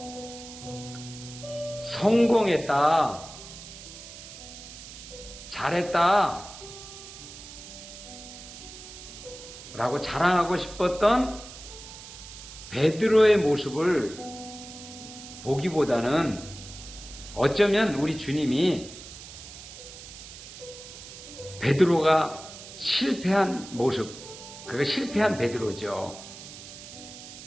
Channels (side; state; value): right; noise; hiss, 14 dB below the sound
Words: 성공했다, 잘했다 라고 자랑하고 싶었던 베드로의 모습을 보기보다는 어쩌면 우리 주님이 베드로가 실패한 모습, 그가 실패한 베드로죠.